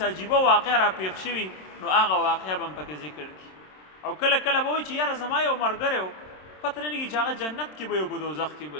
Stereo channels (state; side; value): late; right; 27 ms